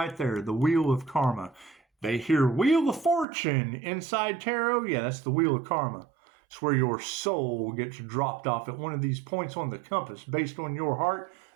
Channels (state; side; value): drops out; left; at 3.2 s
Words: there, the wheel of karma. They hear Wheel of Fortune inside tarot. Yeah, that's the wheel of karma. It's where your soul gets dropped off at one of these points on the compass based on your heart